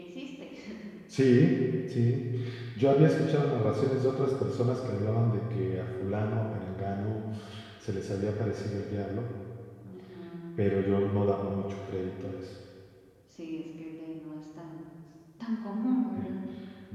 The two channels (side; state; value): both; identical; correlation 1.00